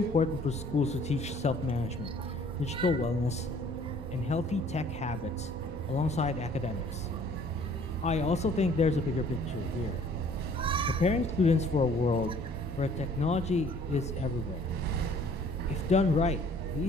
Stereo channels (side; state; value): both; normal; correlation 0.56